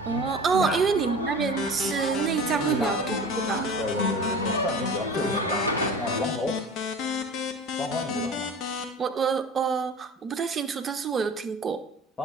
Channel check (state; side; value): normal; both; correlation 0.38